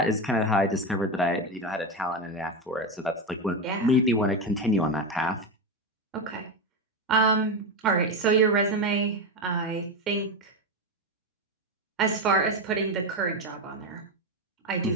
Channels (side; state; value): both; normal; correlation 0.14